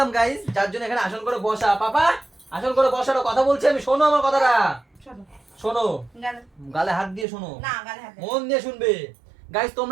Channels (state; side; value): drops out; left; at 7.2 s